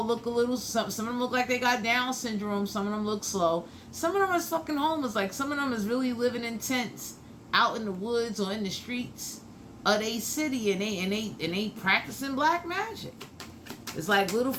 look a little... Some of them look like they got Down syndrome. Some of them look slow. Some of them is fucking homeless. Like some of them is really living in tents out in the woods or in the streets of they city, and they practicing black magic. It's like little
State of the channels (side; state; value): both; identical; correlation 1.00